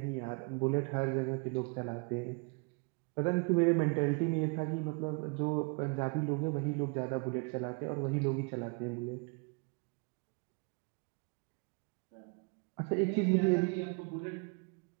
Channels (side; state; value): left; quieter; 34.1 dB